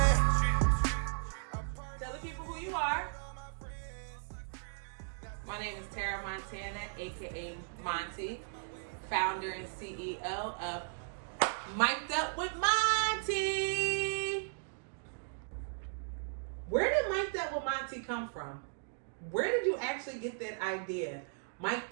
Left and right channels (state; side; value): silent; left; digital silence